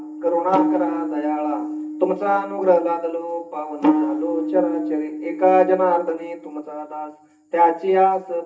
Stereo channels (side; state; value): both; identical; correlation 1.00